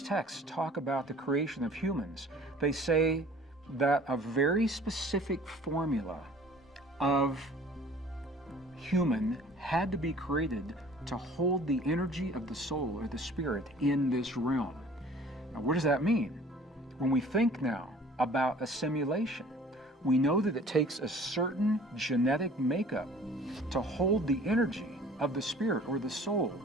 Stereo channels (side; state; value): both; normal; correlation 0.49